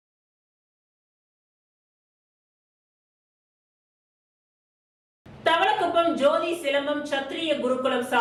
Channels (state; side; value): identical; both; correlation 1.00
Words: தவளக்குப்பம் ஜோதி சிலம்பம் சத்திரிய குருகுலம்